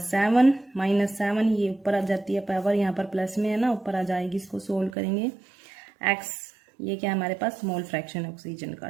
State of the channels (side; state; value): left; drops out; at 5.0 s